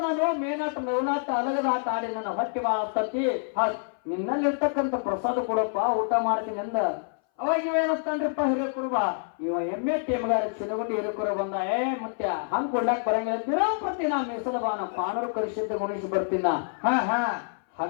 ನಾನು ಮೇನಾಟ ಮೇವನಾಟ ಅಲಗದ ಆಟ ಆಡಿ ನನ್ನ ಹೊಟ್ಟಿ ಬಾಳ ಹತ್ತತಿ. ನಿನ್ನಲ್ಲಿ ಇರ್ತಕ್ಕಂಥ ಪ್ರಸಾದ ಕೊಡಪ್ಪ ಊಟ ಮಾಡ್ತೀನಿ ಅಂದ. ಅವಾಗ ಇವೇನಸ್ತಾನ್ರಿಪ್ಪ ಹಿರೇಕುರುಬ? ಇವ ಎಮ್ಮೆಟ್ಟಿ ಮಗಾರ ಚಿನಗುಂಡಿ ಹಿರೇಕುರುಬ ಬಂದ. ಮತ್ತೆ ಹಂಗ್ ಕೊಡ್ಲಾಕ್ ಬರಂಗಿಲ್ಲ ದಿನಂಪ್ರತಿ ನಾ ಮೀಸಲ ಬಾಣ ಪಾನೂರು ಕಳಿಸಿದ್ದ ಗುಣಿಸಿ ಬರ್ತೀನ.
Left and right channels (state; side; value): silent; right; 59 dB below the other